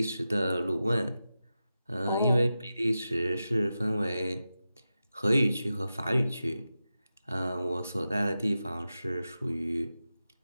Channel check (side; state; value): both; inverted; correlation -0.92